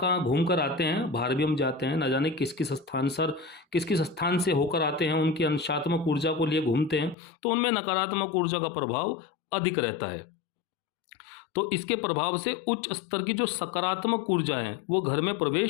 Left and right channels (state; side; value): drops out; right; at 7.2 s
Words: घूम कर आते हैं, बाहर भी हम जाते हैं, ना जाने किस किस स्थान से होकर आते हैं, उनकी अंशात्मक ऊर्जा को लिए घूमते हैं, तो उनमें नकारात्मक ऊर्जा का प्रभाव अधिक रहता है। तो इसके प्रभाव से उच्च स्तर की जो सकारात्मक ऊर्जा है वो घर में